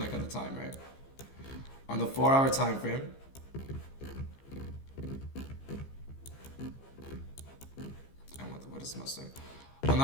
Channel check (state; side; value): late; right; 15 ms